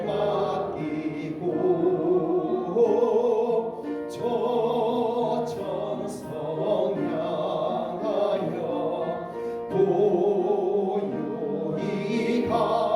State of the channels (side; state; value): both; identical; correlation 1.00